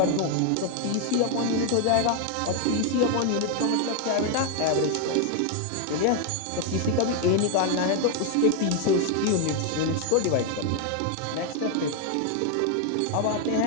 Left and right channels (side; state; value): both; different; correlation 0.00